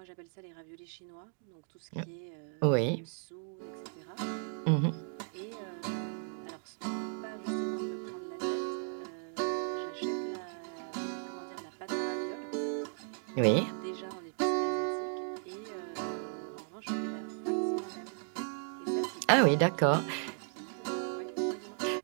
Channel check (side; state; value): left; silent; 54 dB below the other